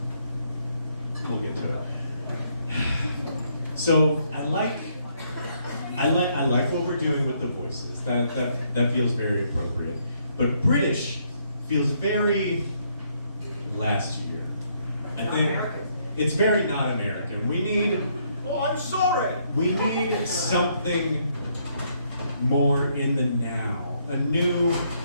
We'll get to it. So I like what we're doing with the voices. That feels very appropriate. But British feels very last year. I think it's very not American. We need Oh, I'm sorry. We need something more in the now. A new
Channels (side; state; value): both; inverted; correlation -0.71